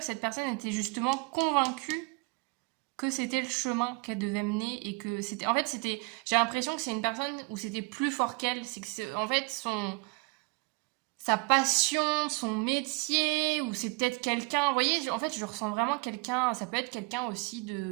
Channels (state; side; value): quieter; left; 27.8 dB